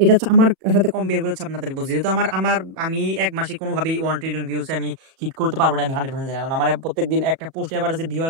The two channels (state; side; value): late; left; 36 ms